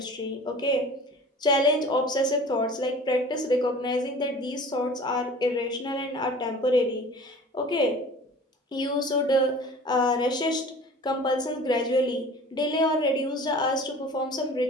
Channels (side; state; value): both; normal; correlation 0.43